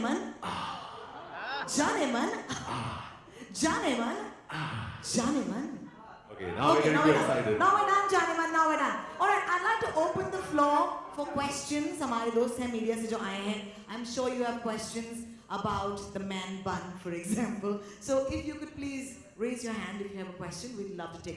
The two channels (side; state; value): both; identical; correlation 1.00